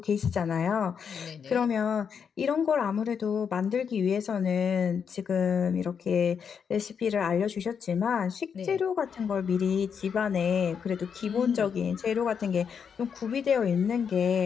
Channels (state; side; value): quieter; right; 6.9 dB